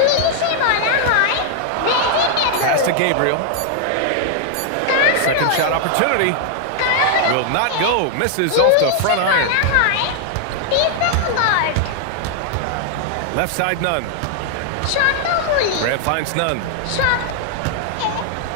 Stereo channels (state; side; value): different; both; correlation 0.00